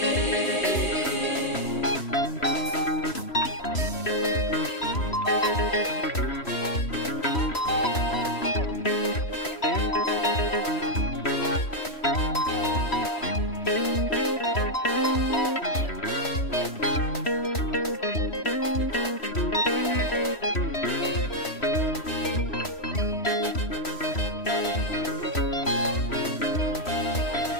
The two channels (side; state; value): right; late; 3.1 ms